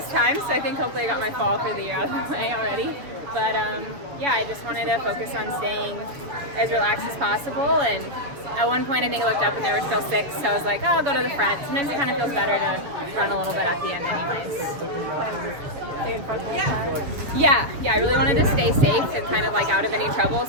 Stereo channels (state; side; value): late; left; 7.0 ms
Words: time, so I think hopefully I got my fall for the year out of the way already. But I just wanted to focus on staying as relaxed as possible. And at one point I think I looked up and there were still 6, so I was like, oh, I'll go to the front. Sometimes it kind of feels better to run a little bit at the end anyways. Yeah, I really wanted to stay safe and kind of like out of any trouble,